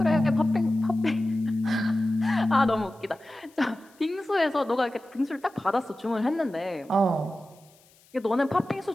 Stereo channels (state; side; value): noise; left; hiss, 30 dB below the sound